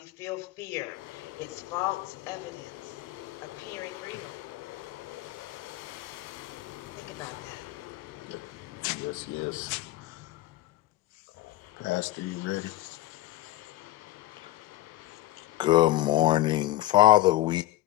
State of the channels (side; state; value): right; quieter; 16.1 dB